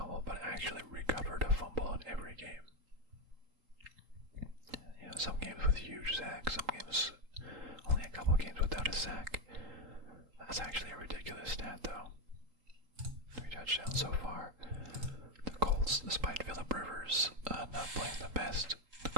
but actually recovered a fumble in every game. Some games with huge sacks, some games only a couple games without a sack. That's actually a ridiculous stat, though. 3 touchdowns so far. The Colts, despite Phillip Rivers not playing the best, the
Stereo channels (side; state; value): left; late; 3.8 ms